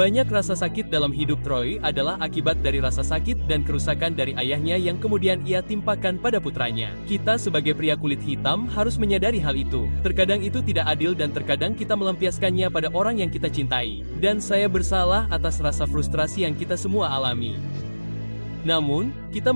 rasa sakit dalam hidup Troy adalah akibat dari rasa sakit dan kerusakan dari ayahnya yang kemudian ia timpakan pada putranya. Kita sebagai pria kulit hitam harus menyadari hal itu. Terkadang itu tidak adil dan terkadang kita melampiaskannya pada orang yang kita cintai. Dan saya bersalah atas rasa frustrasi yang kita semua alami. Namun, kita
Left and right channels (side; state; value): both; inverted; correlation -1.00